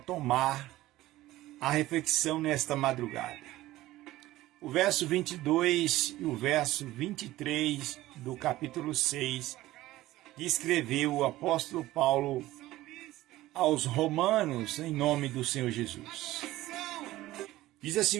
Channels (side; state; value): left; quieter; 16.5 dB